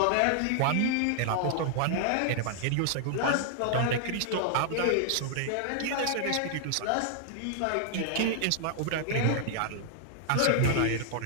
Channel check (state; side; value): different; both; correlation -0.01